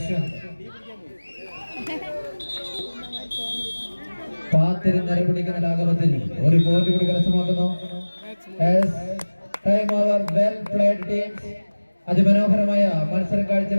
പാത്തിരുന്നര പിടിക്കുന്ന ലാഘവത്തിൽ 1 പോയിന്റ് കൂടി കരസ്ഥമാക്കുന്നു. Well played teams. അതിമനോഹരമായ മത്സരം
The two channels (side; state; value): both; inverted; correlation -1.00